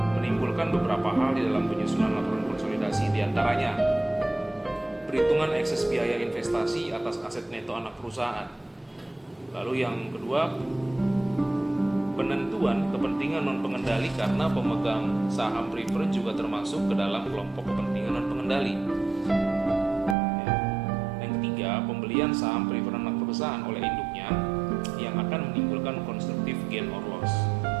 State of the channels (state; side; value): drops out; left; at 20.2 s